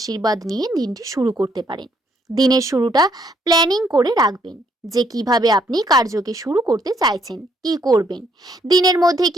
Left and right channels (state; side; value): normal; both; correlation 0.70